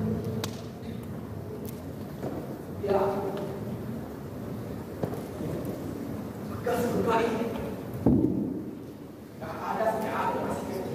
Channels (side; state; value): both; identical; correlation 1.00